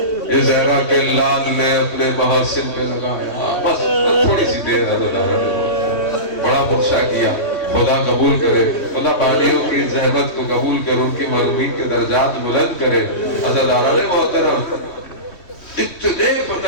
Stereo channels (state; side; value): late; right; 3.1 ms